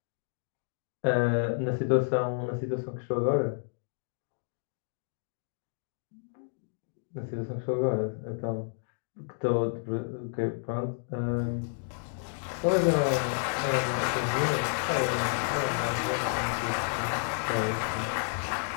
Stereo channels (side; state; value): right; silent; digital silence